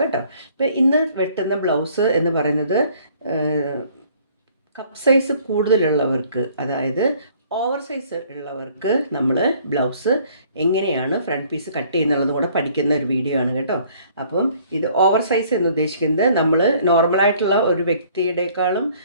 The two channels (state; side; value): inverted; both; correlation -0.58